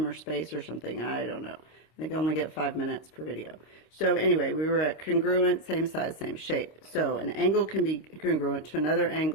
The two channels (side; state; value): right; late; 26 ms